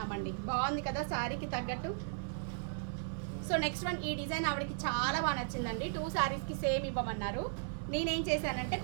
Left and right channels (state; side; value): silent; left; 54 dB below the other